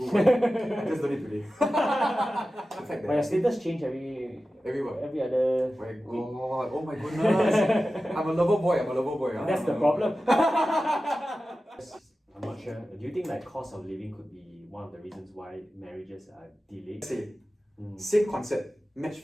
just done it today. But your status change every other My week. God, oh my goodness. I'm a lover boy. That's the problem. I'm not sure. Do you think cost of living could be one of the reasons why marriages are delayed? Same concept, match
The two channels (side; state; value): both; normal; correlation 0.94